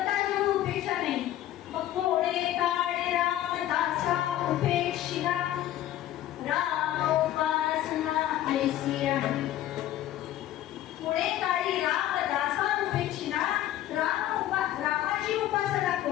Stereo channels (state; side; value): quieter; right; 13.0 dB